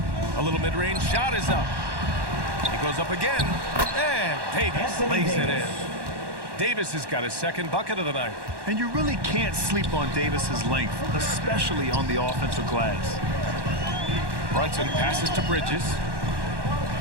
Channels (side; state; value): left; late; 1.1 ms